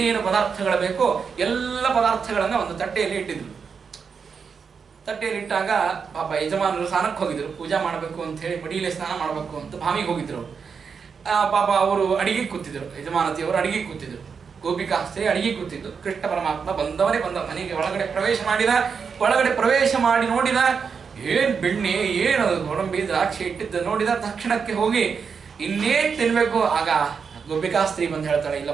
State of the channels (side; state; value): left; quieter; 6.0 dB